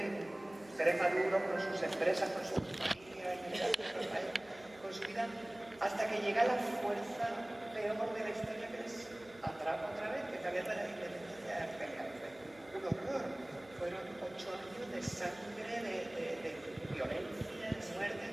seres maduros con sus empresas, con su familia, con su vida, hasta que llega la fuerza peor de la historia que les atrapa otra vez, que es la guerra de la independencia de Argelia. Fue un horror. Fueron 8 años de sangre, de violencia, de muerte.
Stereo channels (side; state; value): right; noise; hum, 24 dB below the sound